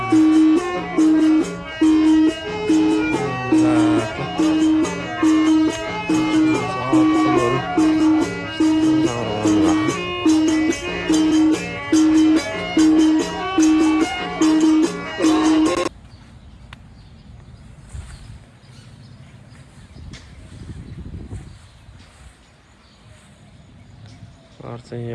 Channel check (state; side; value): identical; both; correlation 1.00